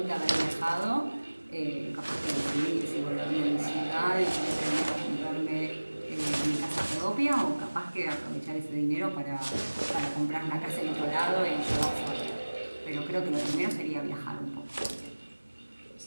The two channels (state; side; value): inverted; both; correlation -1.00